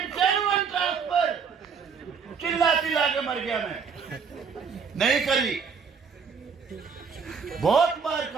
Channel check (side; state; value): left; quieter; 5.9 dB